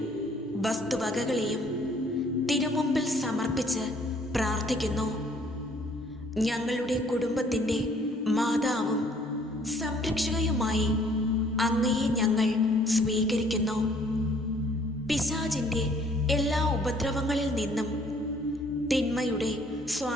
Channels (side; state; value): both; normal; correlation 0.60